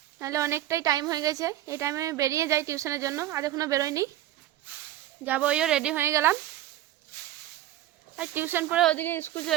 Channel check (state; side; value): quieter; left; 13.5 dB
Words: নাহলে অনেকটাই টাইম হয়ে গেছে। এই টাইমে আমি বেরিয়ে যাই টিউশনের জন্য, আজ এখনো বেরোয়নি, যাবো। ওইও রেডি হয়ে গেলাম। আর টিউশন পরে ওদিকে স্কুল